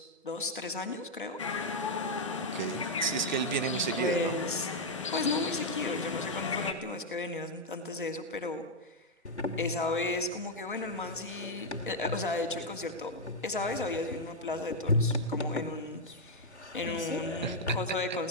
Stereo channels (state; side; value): normal; both; correlation -0.01